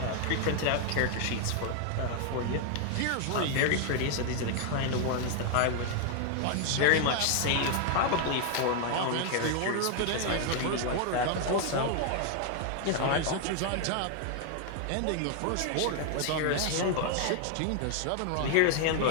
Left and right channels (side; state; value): both; different; correlation 0.00